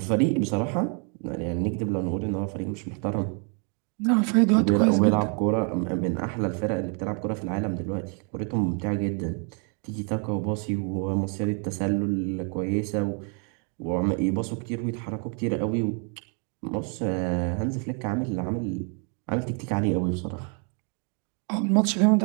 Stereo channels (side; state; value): left; quieter; 39.0 dB